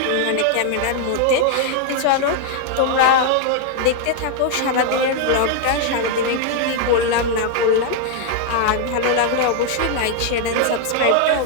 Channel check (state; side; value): different; both; correlation 0.00